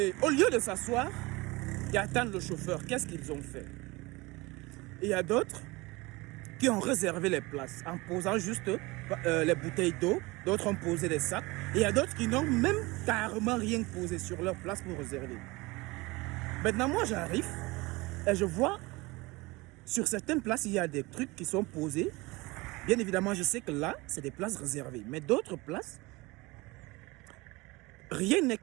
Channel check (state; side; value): quieter; left; 23.0 dB